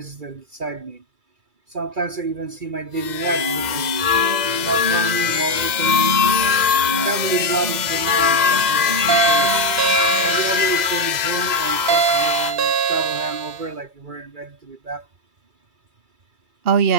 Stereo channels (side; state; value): left; late; 2.1 ms